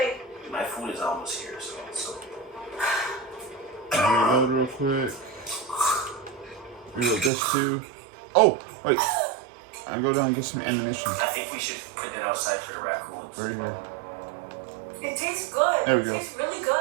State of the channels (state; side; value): drops out; left; at 7.3 s